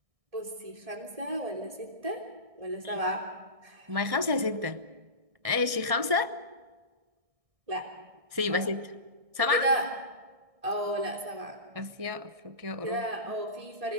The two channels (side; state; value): left; late; 1.6 ms